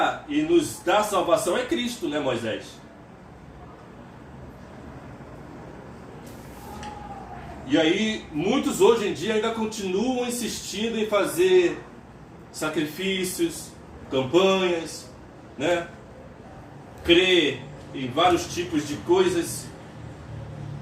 e nos dar salvação é Cristo, né, Moisés? E aí, muitos hoje em dia ainda continuam insistindo em fazer sacrifícios, campanhas, né? Crer em vários tipos de coisas,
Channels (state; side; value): identical; both; correlation 1.00